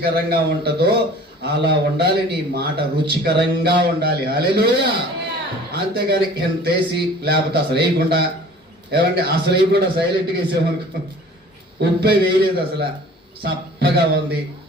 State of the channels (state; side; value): normal; both; correlation 0.47